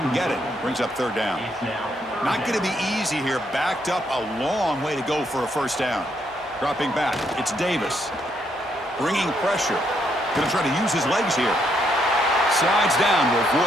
get it. Brings up 3rd down. Not going to be easy here. Backed up a long way to go for a 1st down. Dropping back, it's Davis. Bringing pressure. Going to try to use his legs here. Slides down to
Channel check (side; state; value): both; normal; correlation 0.74